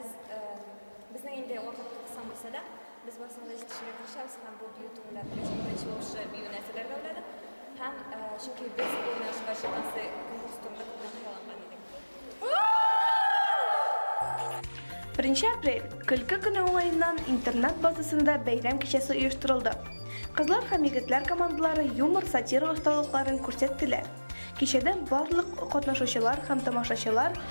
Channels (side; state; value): both; inverted; correlation -1.00